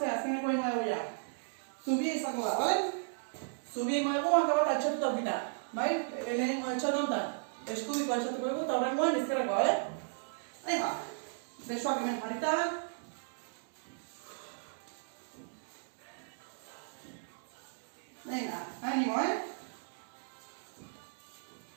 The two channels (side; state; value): left; silent; digital silence